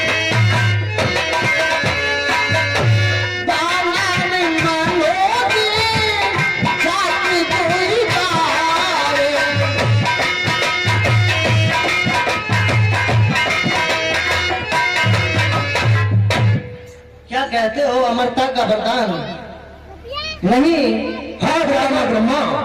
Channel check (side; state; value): both; identical; correlation 1.00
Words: कहते हो अमरता का वरदान? नहीं। हाँ ब्रह्मा,